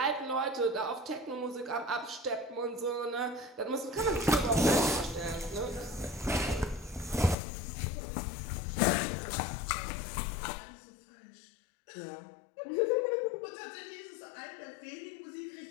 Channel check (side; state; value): right; drops out; at 7.4 s